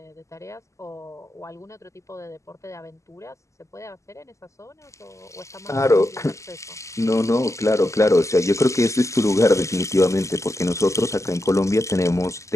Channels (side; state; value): right; late; 0.15 ms